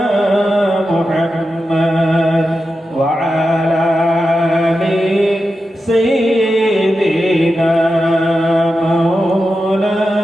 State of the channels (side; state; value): both; normal; correlation 0.90